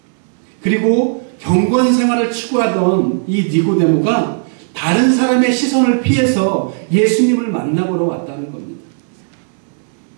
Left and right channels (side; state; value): left; silent; digital silence